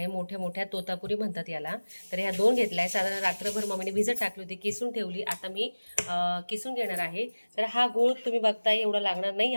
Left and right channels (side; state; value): both; inverted; correlation -1.00